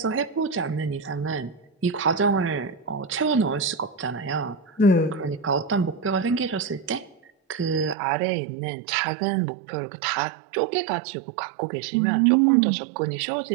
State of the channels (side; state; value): left; drops out; at 8.0 s